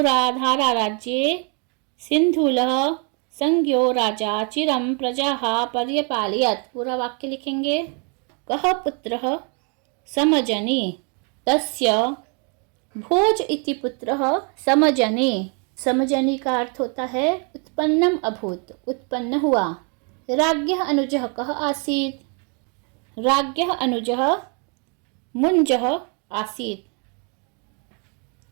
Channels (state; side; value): quieter; left; 37.0 dB